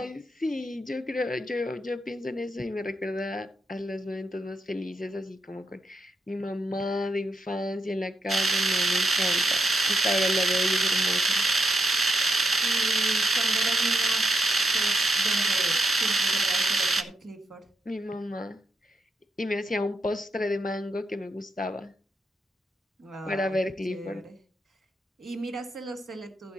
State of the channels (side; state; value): both; normal; correlation 0.82